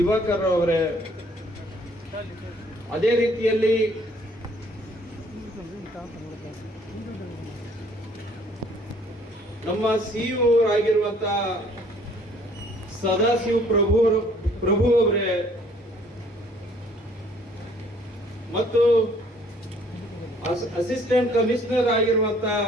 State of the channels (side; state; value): both; normal; correlation 0.59